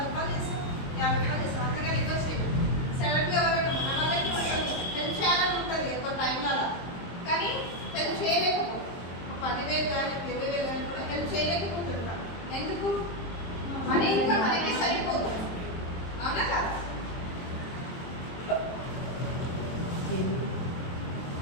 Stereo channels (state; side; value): late; right; 23 ms